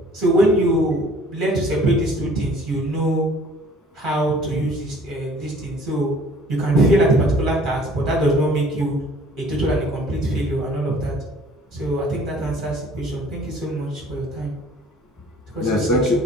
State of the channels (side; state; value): both; normal; correlation 0.53